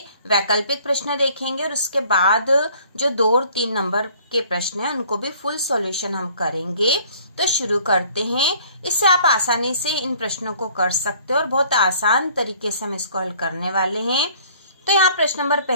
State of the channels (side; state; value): both; inverted; correlation -0.55